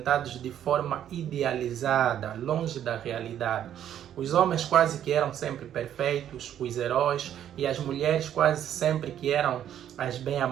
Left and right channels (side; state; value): left; quieter; 10.4 dB